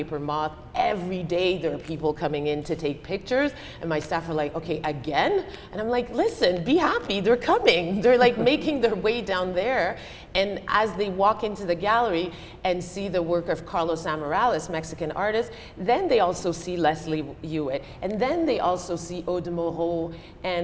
moth. Every day there are people coming in to take pictures, and my staff are like, okay, again? And I'm like, listen, be happy, they're coming. They're like making their way down there. And as they walk into the gallery and see the work of Carlos Amarales, Mexican artist, then they also see Leslie Hewitt. And then they also see Aude Moreau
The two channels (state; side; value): identical; both; correlation 1.00